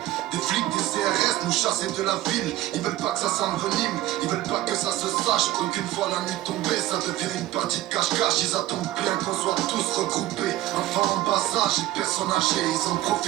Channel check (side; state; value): left; quieter; 15.5 dB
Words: des flics, des CRS nous chasser de la ville. Ils veulent pas que ça s'envenime, ils veulent pas que ça se sache. Qu'une fois la nuit tombée, ça devient une partie de cache-cache. Ils attendent bien qu'on soit tous regroupés. Enfants en bas âge et personnes âgées, ils en